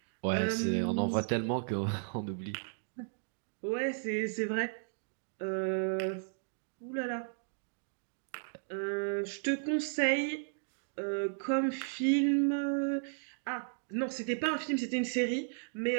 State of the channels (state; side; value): silent; left; digital silence